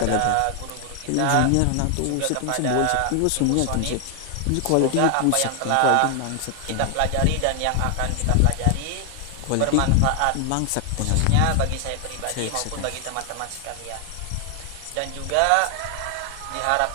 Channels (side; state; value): both; different; correlation 0.00